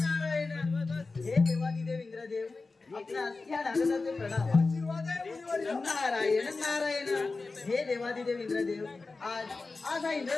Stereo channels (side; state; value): right; quieter; 3.8 dB